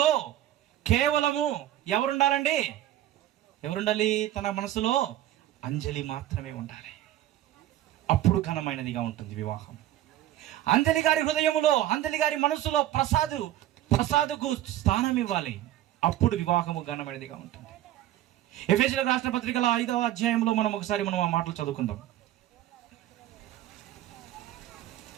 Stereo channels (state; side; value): quieter; left; 13.3 dB